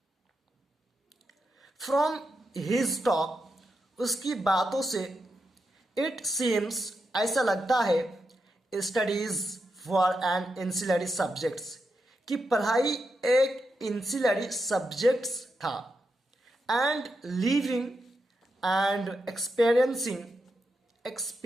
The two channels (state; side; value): normal; both; correlation 0.86